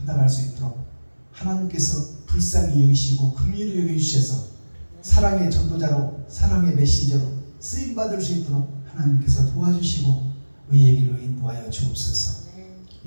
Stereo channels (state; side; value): inverted; both; correlation -1.00